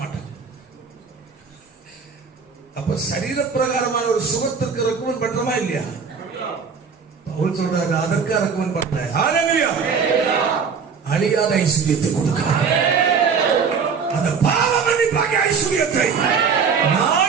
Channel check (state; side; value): quieter; left; 5.9 dB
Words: மாட்டாங்க. அப்ப சரீர பிரகாரமான ஒரு சுகத்திற்கு ரெக்கமெண்ட் பண்றோமா இல்லையா? பவுல் சொல்றாரு, அதற்கு ரெக்கமெண்ட் பண்ணல. ஹல்லேலூயா, அழியாத ஐஸ்வர்யத்தை கொடுக்கிறார். அந்த பாவ மன்னிப்பாகிய ஐஸ்வர்யத்தை